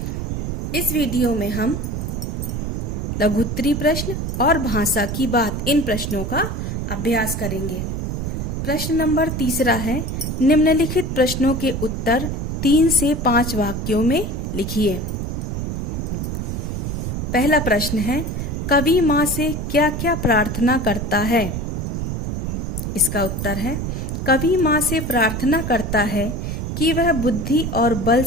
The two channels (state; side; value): noise; right; rumble, 3 dB below the sound